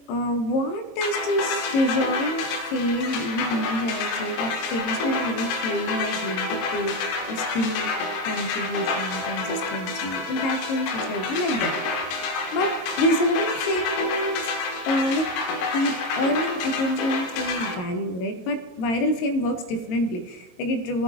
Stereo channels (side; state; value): right; late; 22 ms